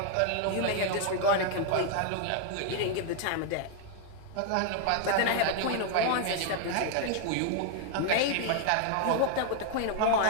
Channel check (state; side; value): different; both; correlation 0.00